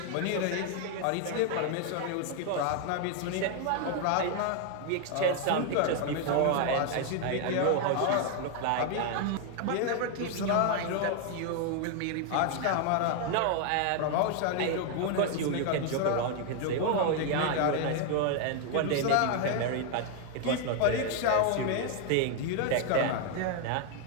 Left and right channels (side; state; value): both; different; correlation 0.00